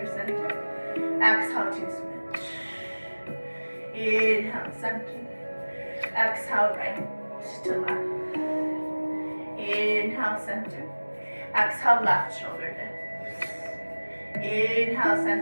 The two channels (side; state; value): both; inverted; correlation -1.00